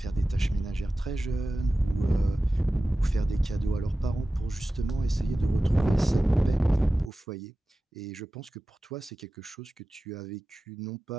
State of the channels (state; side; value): normal; both; correlation 0.95